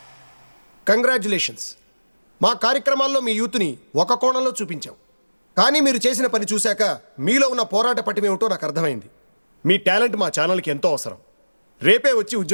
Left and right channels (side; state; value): both; inverted; correlation -1.00